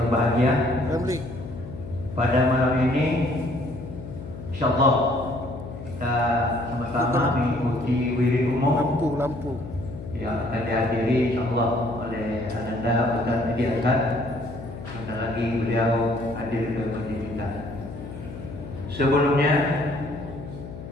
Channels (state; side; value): noise; left; hum, 11 dB below the sound